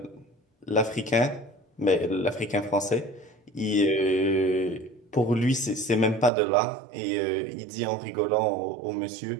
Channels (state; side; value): drops out; left; at 6.3 s